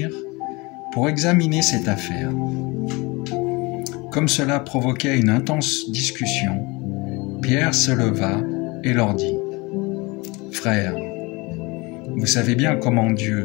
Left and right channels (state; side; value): quieter; right; 25.2 dB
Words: pour examiner cette affaire. Comme cela provoquait une intense discussion, Pierre se leva et leur dit : « Frères, vous savez bien comment